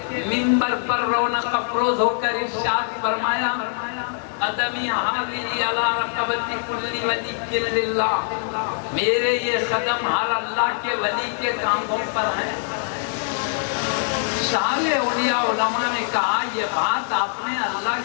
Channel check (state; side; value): silent; right; digital silence